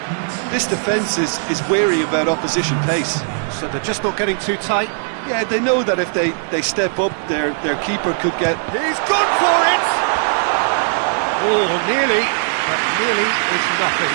This defence is wary about opposition pace. So they're just not getting too tight. Yeah, they know that if they step up, their keeper could get... He's gone for it! Oh, nearly, but nearly is nothing.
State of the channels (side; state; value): left; silent; digital silence